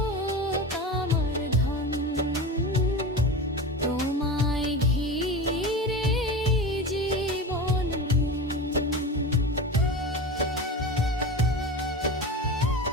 আমার ধন তোমায় ঘিরে জীবন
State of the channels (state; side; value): normal; both; correlation 0.27